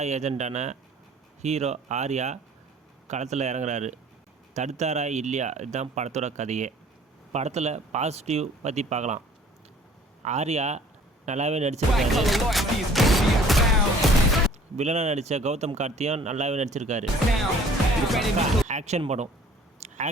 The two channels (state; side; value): normal; both; correlation 0.53